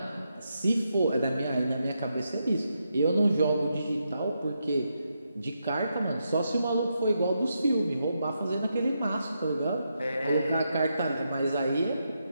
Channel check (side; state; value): both; inverted; correlation -0.83